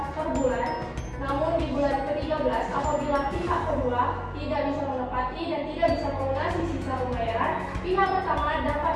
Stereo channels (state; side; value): identical; both; correlation 1.00